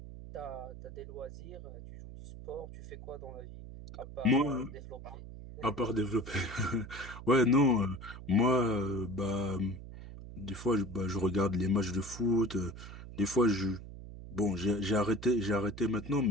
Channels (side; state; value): right; noise; hum, 13 dB below the sound